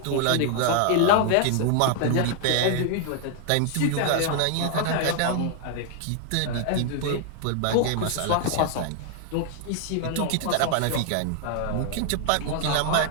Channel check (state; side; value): different; both; correlation 0.00